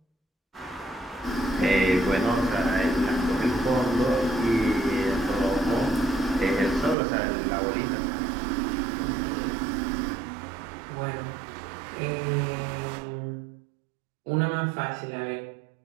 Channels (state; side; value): drops out; left; at 7.0 s